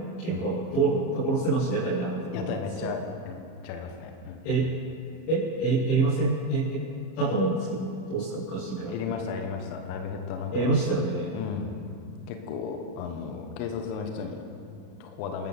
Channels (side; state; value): right; late; 37 ms